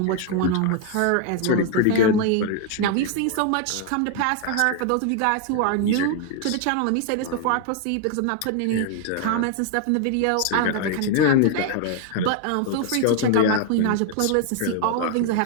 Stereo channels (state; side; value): different; both; correlation 0.00